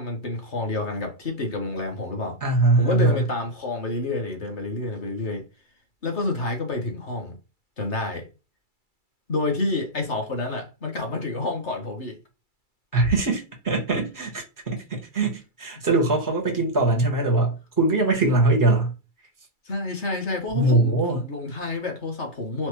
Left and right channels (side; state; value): right; late; 2.3 ms